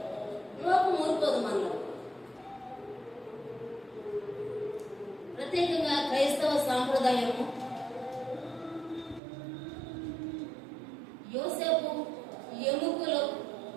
లోకం ఊరుకోదు మనలో. ప్రత్యేకంగా క్రైస్తవ సాంప్రదాయము యోసేపు ఎముకలు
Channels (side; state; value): left; drops out; at 9.2 s